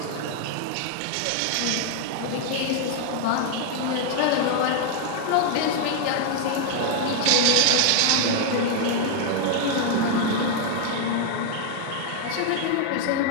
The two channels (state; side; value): different; both; correlation 0.00